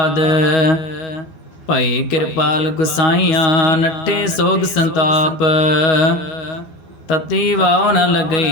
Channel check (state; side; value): late; right; 12 ms